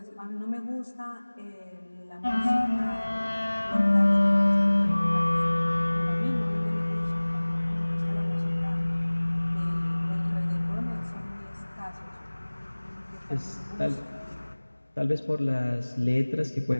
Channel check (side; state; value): both; inverted; correlation -1.00